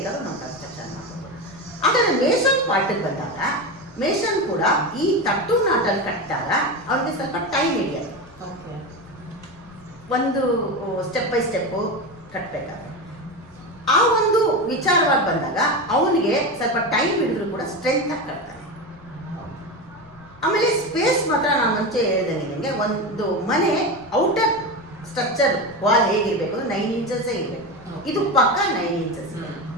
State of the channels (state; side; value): noise; left; rumble, 25 dB below the sound